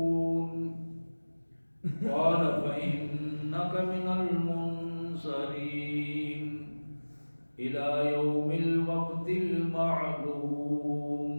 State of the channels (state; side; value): inverted; both; correlation -1.00